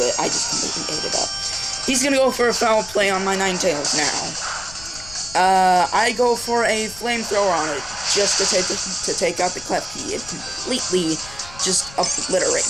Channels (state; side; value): noise; left; rumble, 18 dB below the sound